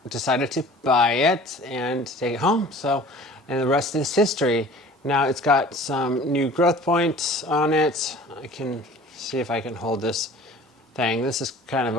decided to buy it and take it home. So, and the rest is history. Now it's got some new growth points on it. I can see if I can hold this thing. This is kind of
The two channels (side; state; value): both; normal; correlation 0.46